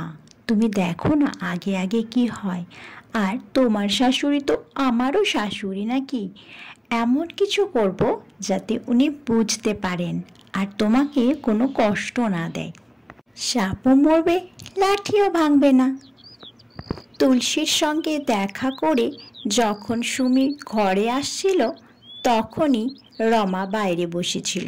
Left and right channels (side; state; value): both; identical; correlation 1.00